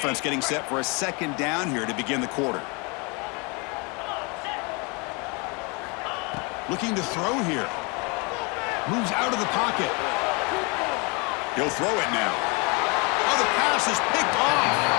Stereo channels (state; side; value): quieter; right; 30.4 dB